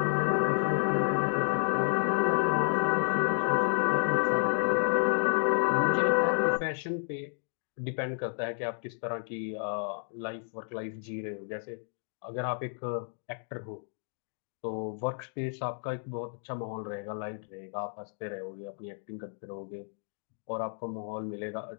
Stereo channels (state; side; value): silent; right; digital silence